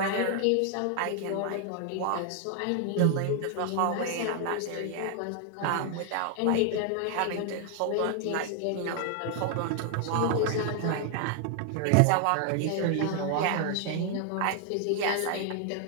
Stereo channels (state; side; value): different; both; correlation 0.00